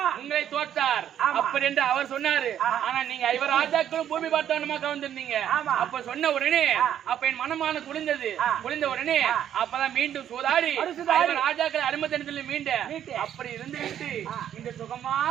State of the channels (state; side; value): quieter; left; 10.2 dB